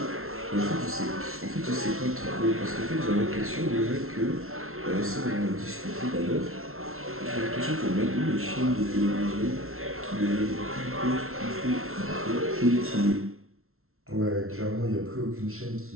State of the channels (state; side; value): late; left; 0.62 ms